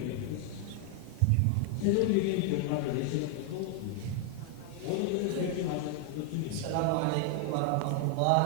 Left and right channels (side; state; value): both; different; correlation 0.00